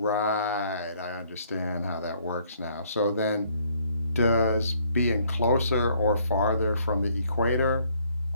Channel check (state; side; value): inverted; both; correlation -0.65